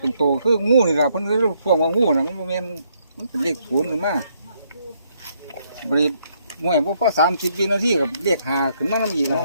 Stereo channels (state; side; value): inverted; both; correlation -0.72